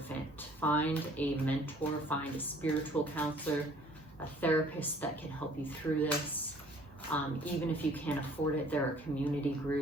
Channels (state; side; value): normal; both; correlation 0.56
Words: Find a mentor, find a spiritual counselor, a therapist that can help you through this. Even if you can't afford it, there are community